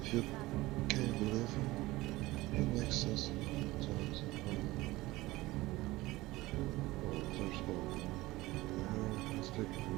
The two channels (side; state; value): left; quieter; 19.3 dB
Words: If you can't believe him, it makes sense sometimes. There's hope. Let's take it from